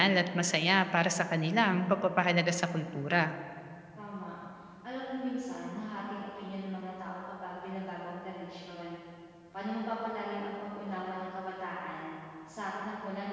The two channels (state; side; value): identical; both; correlation 1.00